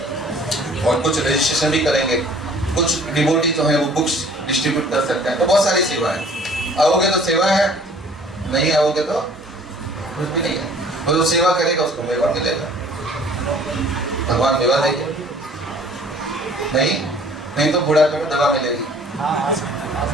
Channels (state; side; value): normal; both; correlation 0.53